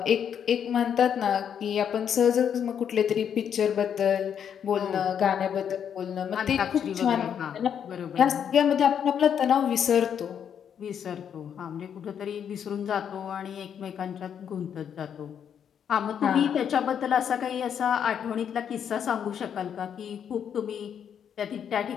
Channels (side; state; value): right; quieter; 8.3 dB